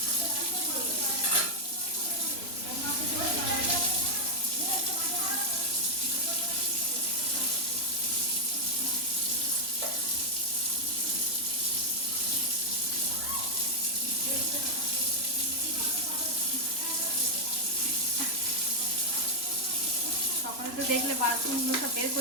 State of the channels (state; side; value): late; right; 3.0 ms